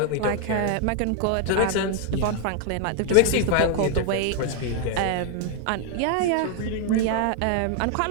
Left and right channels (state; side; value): different; both; correlation 0.00